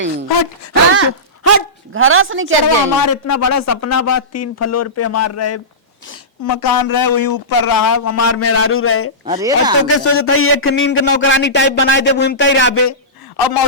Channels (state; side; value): normal; both; correlation -0.19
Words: हट हट हट घरास नहीं कर चलो जाई। हमारे इतना बड़ा सपना बा, 3 फ्लोर पे हमार रहे मकान रहे, वही ऊपर रहा हमार मेहरारू रहे। अरे और तो के सोचत है एक नींद के नौकरानी टाइप बनाए दे घूमता ही रहबे, और